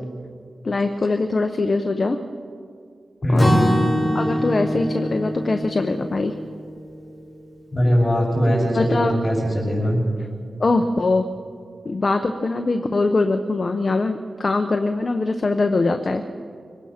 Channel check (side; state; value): both; normal; correlation 0.95